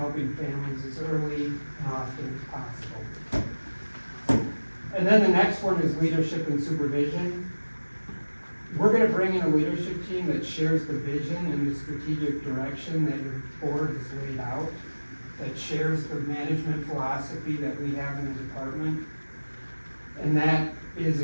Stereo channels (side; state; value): both; inverted; correlation -1.00